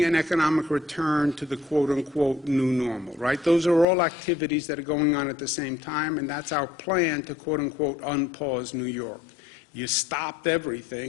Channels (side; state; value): right; drops out; at 3.9 s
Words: an economic return to the quote-unquote new normal, right? Those are all activities that are going on at the same time, and that's our plan to quote-unquote unpause New York. You stopped